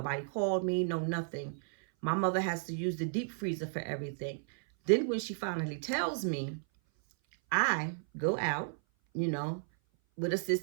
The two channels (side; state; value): left; silent; 56 dB below the other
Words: called me, no nothing. My mother has to use the deep freezer for everything. Then when she finally tells me, I go out, with